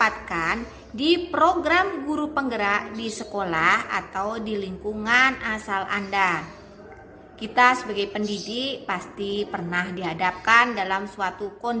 di program guru penggerak di sekolah atau di lingkungan asal Anda. Kita sebagai pendidik pasti pernah dihadapkan dalam suatu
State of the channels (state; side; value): identical; both; correlation 1.00